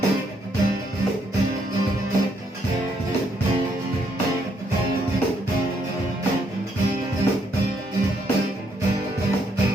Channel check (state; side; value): normal; both; correlation 0.73